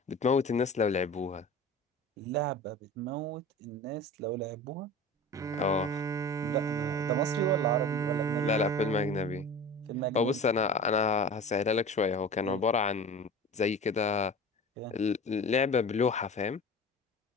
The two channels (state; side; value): normal; both; correlation 0.36